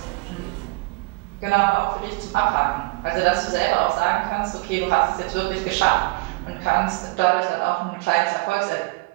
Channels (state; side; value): quieter; left; 26.1 dB